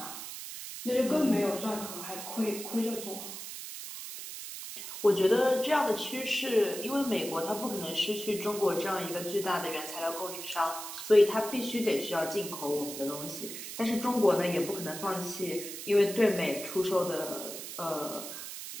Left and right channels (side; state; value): right; noise; hiss, 9 dB below the sound